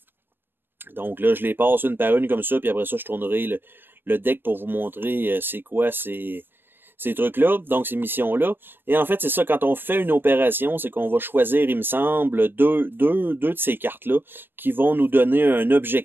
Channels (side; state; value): left; late; 0.098 ms